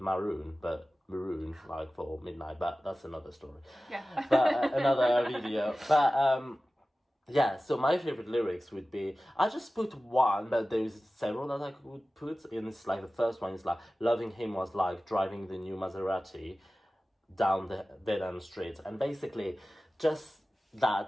Maroon like for Midnight, but that's another story. Yeah. But another video. But so my favorite lyrics would be, I just put one, but there's several that I could put. And it's like the first one is like, loving him was like driving the new Maserati down the dead end street, and basically just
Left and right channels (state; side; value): normal; both; correlation 0.96